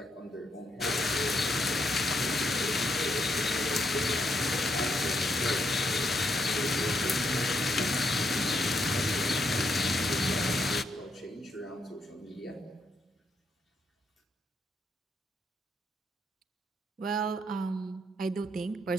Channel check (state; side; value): normal; both; correlation 0.77